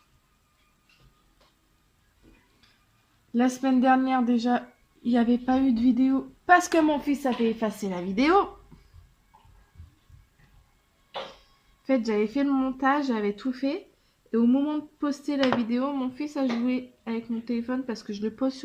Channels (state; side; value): identical; both; correlation 1.00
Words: La semaine dernière déjà, il n'y avait pas eu de vidéo parce que mon fils avait effacé la vidéo. En fait, j'avais fait le montage, j'avais tout fait. Et au moment de poster la vidéo, mon fils a joué avec mon téléphone parce que je le pose